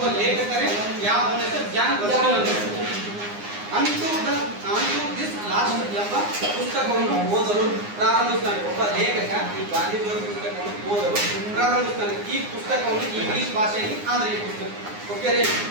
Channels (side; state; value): left; late; 9.7 ms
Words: ಲೇಖಕರೇ, ಯಾವ ಅವನ ಹೆಸರು ಜಾನ್ ರಸ್ಕಿನ್ ಅಂತ ಹೇಳಿ. ಅಂತೂ ದಿಸ್ ಲಾಸ್ಟ್ ಎಂಬ ಪುಸ್ತಕವನ್ನು ಓದಲು ಪ್ರಾರಂಭಿಸ್ತಾನೆ. ಒಬ್ಬ ಲೇಖಕ ಈ ಗಾಂಧೀಜಿಯವರ ಪುಸ್ತಕವನ್ನು ಓದಲು ಪ್ರಾರಂಭಿಸ್ತಾನೆ. ಈ ಪುಸ್ತಕವನ್ನು ಇಂಗ್ಲಿಷ್ ಭಾಷೆಯಲ್ಲಿ ಆದ್ರೆ ಈ ಪುಸ್ತಕ ಓಕೆ ರೀ